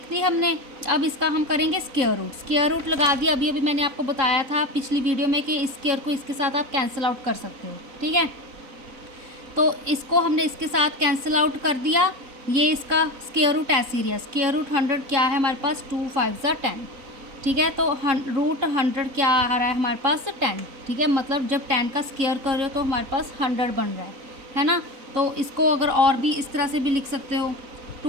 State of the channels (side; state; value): left; late; 4.0 ms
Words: दी हमने। अब इसका हम करेंगे स्क्वायर रूट। स्क्वायर रूट लगा दिया, अभी अभी मैंने आपको बताया था पिछली वीडियो में कि इस स्क्वायर को इसके साथ आप कैंसिल आउट कर सकते हो। ठीक है, तो इसको हमने इसके साथ कैंसिल आउट कर दिया। ये इसका स्क्वायर रूट ऐसे ही रहा। स्क्वायर रूट 100 क्या है हमारे पास, 2 5 ज़ा 10। ठीक है, तो रूट 100 क्या आ रहा है हमारे पास, 10। ठीक है, मतलब जब 10 का स्क्वायर कर रहे हो तो हमारे पास 100 बन रहा है ना। तो इसको अगर और भी इस तरह से भी लिख सकते हो,